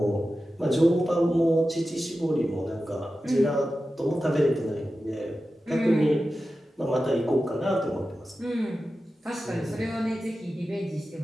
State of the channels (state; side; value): normal; both; correlation 0.93